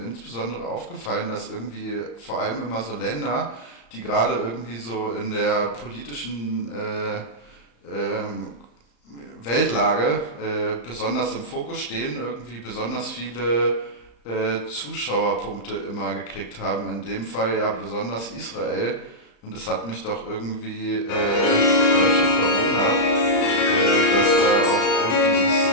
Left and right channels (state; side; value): late; right; 35 ms